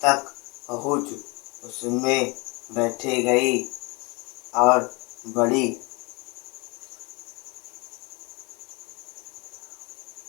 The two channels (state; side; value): quieter; right; 27.6 dB